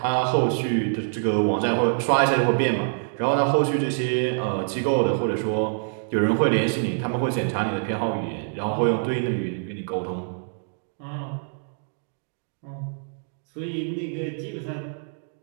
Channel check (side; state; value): left; silent; digital silence